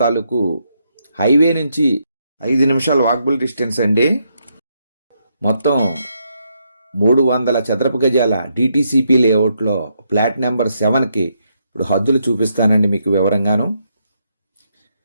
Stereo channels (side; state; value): both; inverted; correlation -0.78